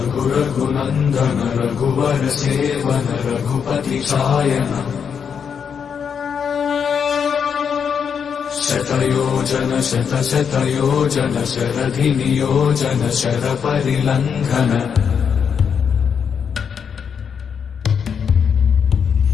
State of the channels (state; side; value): quieter; right; 7.0 dB